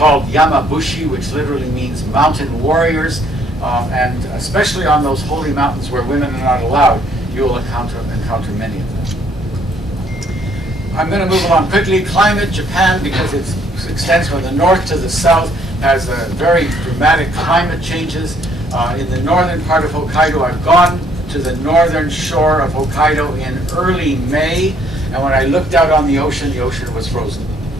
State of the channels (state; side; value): normal; both; correlation 0.65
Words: yamabushi, which literally means mountain warriors. And especially on those holy mountains where women are not allowed, you will encounter many of them. I'm going to move along quickly. Climate, Japan, because it extends from the north to the south, has very dramatic climate changes. In the northern part of Hokkaido, I've gone to the northern shore of Hokkaido in early May, and when I looked out on the ocean was frozen.